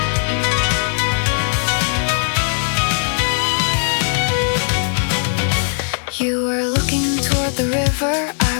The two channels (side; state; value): right; silent; digital silence